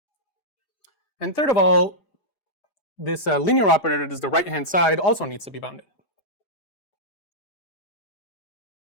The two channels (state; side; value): late; right; 4.8 ms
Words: And third of all, this linear operator that is the right-hand side also needs to be bounded.